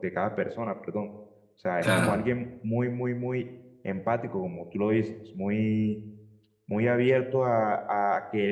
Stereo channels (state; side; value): identical; both; correlation 1.00